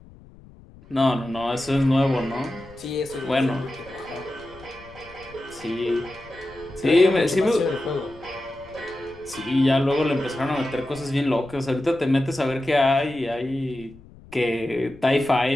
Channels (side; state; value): left; noise; rumble, 22 dB below the sound